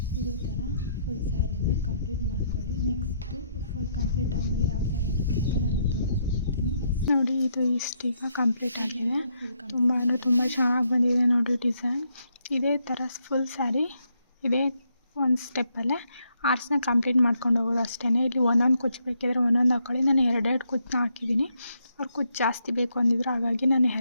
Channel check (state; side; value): inverted; both; correlation -0.75